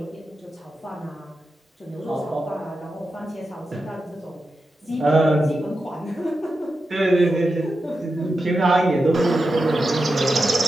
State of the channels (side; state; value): both; normal; correlation 0.90